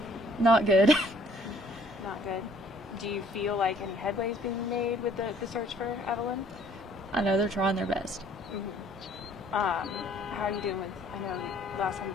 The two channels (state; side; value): normal; both; correlation 0.59